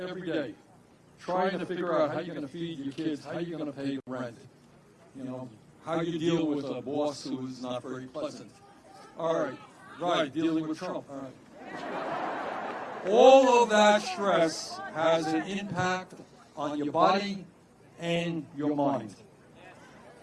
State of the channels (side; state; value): both; identical; correlation 1.00